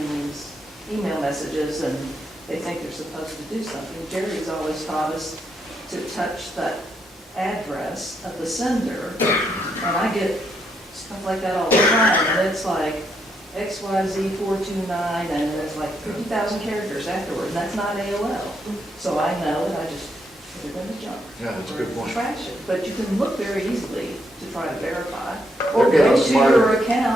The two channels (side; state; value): both; normal; correlation 0.77